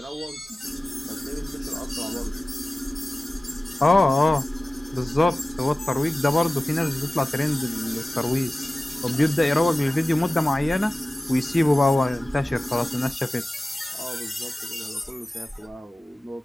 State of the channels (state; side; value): normal; both; correlation 0.97